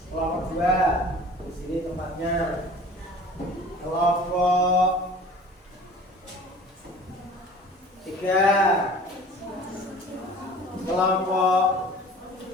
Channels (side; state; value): both; normal; correlation 0.45